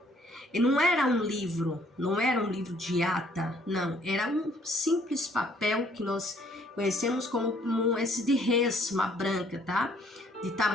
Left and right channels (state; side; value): normal; both; correlation 0.63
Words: E não era um livro de ata, não. Era um simples papel que nós conhecemos como esse de resma branca, tá? De